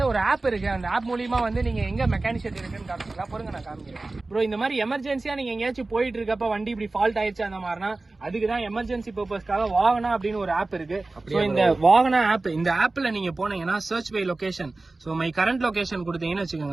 ஒரு ஆப் இருக்கு, அந்த ஆப் மூலியமா வந்து நீங்க எங்க மெக்கானிக் ஷெட் இருக்குன்னு காமிச்சிக்கலாம். பொறுங்க நான் காமிக்கிறேன் ப்ரோ. இந்த மாதிரி எமர்ஜென்சியா நீங்க எங்கேயாச்சும் போயிட்டு இருக்கப்ப வண்டி இப்படி ஃபால்ட் ஆயிடுச்சு அந்த மாதிரினா அதுக்குதான் எமர்ஜென்சி பர்பஸ்க்காக வாகனா அப்படின்னு ஒரு ஆப் இருக்கு. ஸோ இந்த வாகனா ஆப், இந்த ஆப்ல நீங்க போனீங்கன்னா search by location, so my current location கொடுத்தீங்கன்னு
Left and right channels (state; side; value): quieter; left; 3.2 dB